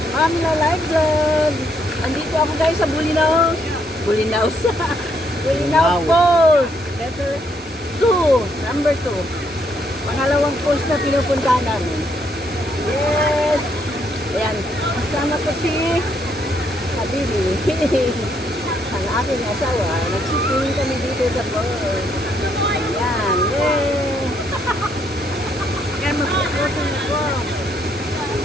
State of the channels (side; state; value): both; normal; correlation 0.73